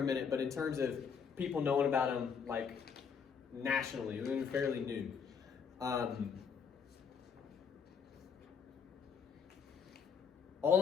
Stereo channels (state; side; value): quieter; right; 6.5 dB